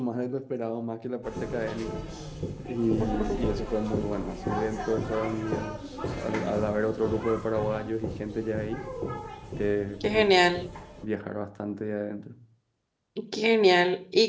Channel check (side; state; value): both; identical; correlation 1.00